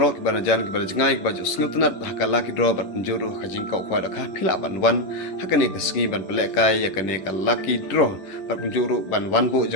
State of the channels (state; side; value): late; right; 11 ms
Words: ki banajan ki banajangai ki baju sngutunat hakala ki dro bat penjuru kajing kau kwa da kha phila ban wan hakane ka sngi ban pelek kai yakane ka laki dro bat penjuru ban wan bu